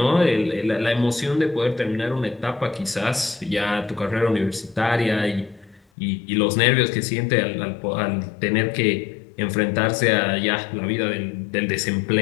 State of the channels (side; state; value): right; drops out; at 5.8 s